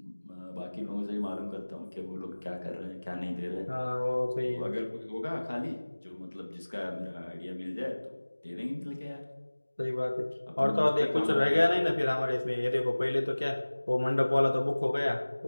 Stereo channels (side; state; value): both; inverted; correlation -1.00